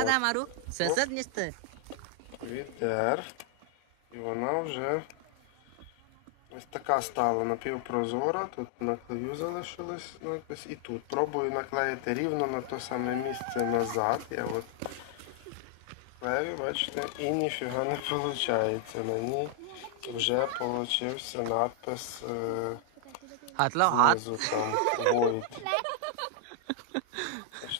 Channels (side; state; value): both; different; correlation 0.00